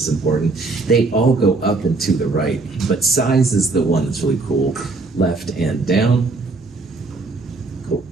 important. They all go up and to the right, but size is the one that's really cool. Left and down. Cool.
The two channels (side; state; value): left; quieter; 3.6 dB